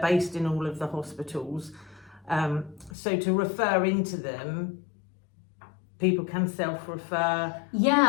based in all of the hospitals, so to refer into them, people can self-refer.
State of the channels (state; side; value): drops out; right; at 2.9 s